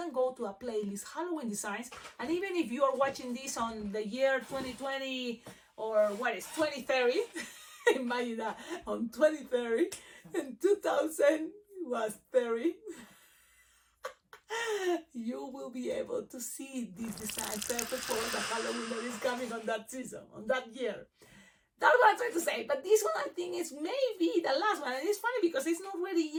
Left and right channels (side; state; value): both; identical; correlation 1.00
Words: go to a playlist, Halloween designs, and even if you are watching this on the year 2020 or what is 2030, imagine that on 2030 and 2000 was 30. You will be able to see these designs perfect for the Halloween that is coming on that season, on that year. That's what I'm trying to say. But this one, I think, is maybe the last one. And it's funny because it's not ready